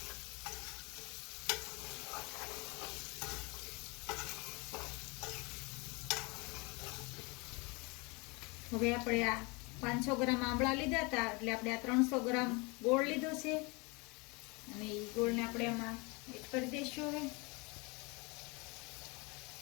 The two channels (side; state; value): right; quieter; 28.2 dB